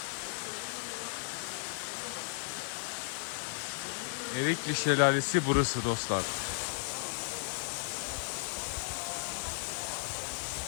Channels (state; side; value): silent; right; digital silence